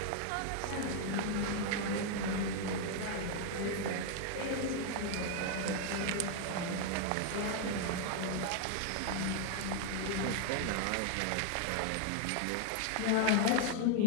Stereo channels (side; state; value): both; different; correlation 0.00